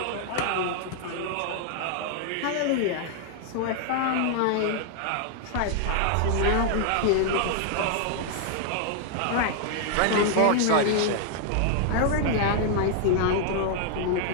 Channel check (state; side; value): different; both; correlation 0.00